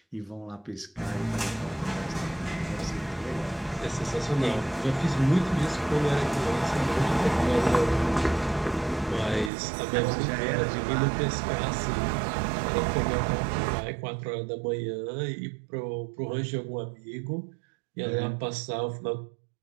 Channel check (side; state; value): left; drops out; at 9.5 s